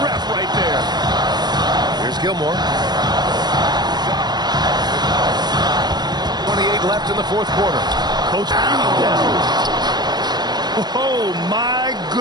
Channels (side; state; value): left; late; 0.20 ms